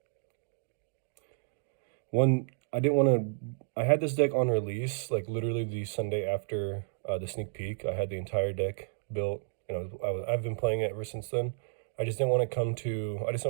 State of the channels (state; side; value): silent; left; digital silence